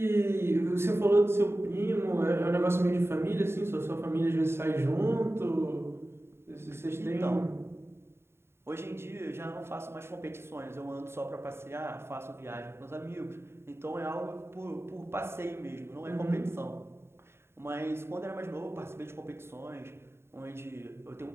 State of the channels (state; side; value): late; left; 0.12 ms